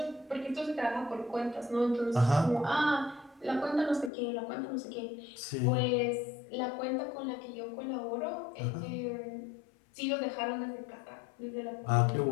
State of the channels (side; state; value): right; drops out; at 4.1 s